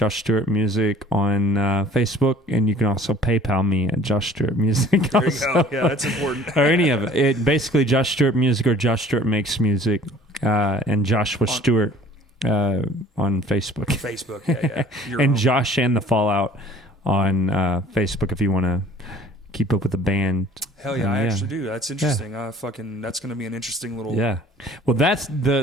Stewart Music, on Facebook, and you can also PayPal me at Josh Stewart Music. There you go. Yeah, that's important. Or any of it. Basically, Josh Stewart Music or Josh Stewart Makes Music, and Joshua Stewart on Facebook. Facebook, yeah. And Josh and the Fallout on Facebook if you want to keep up with the band. Hell yeah, I actually do. That's interesting. That's going to be an interesting little... Yeah. Well, that's the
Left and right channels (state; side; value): normal; both; correlation 0.52